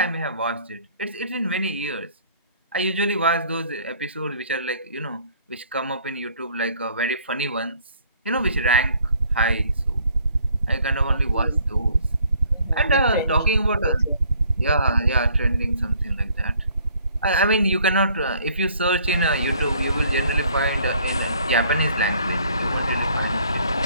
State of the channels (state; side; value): inverted; both; correlation -0.60